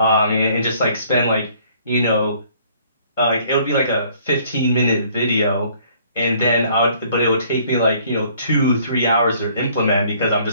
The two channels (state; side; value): inverted; both; correlation -0.59